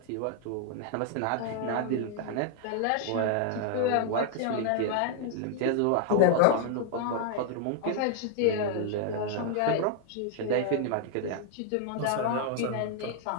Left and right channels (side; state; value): both; different; correlation 0.00